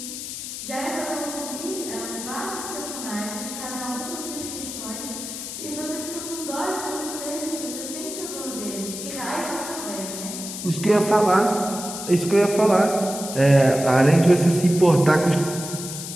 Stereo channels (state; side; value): noise; left; hiss, 8 dB below the sound